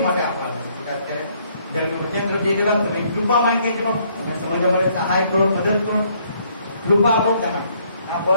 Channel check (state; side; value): inverted; both; correlation -0.67